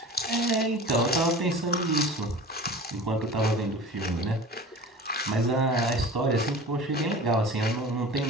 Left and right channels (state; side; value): normal; both; correlation 0.37